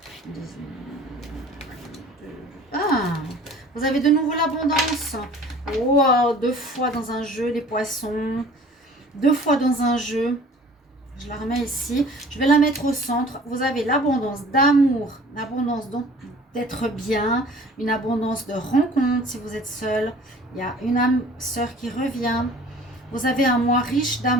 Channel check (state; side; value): normal; both; correlation 0.48